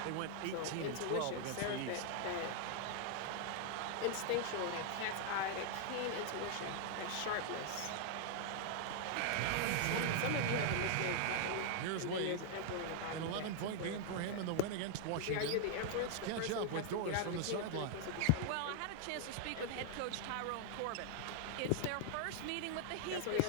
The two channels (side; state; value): both; different; correlation 0.00